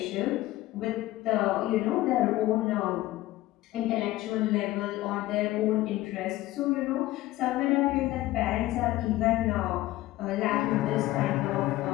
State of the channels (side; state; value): right; quieter; 16.7 dB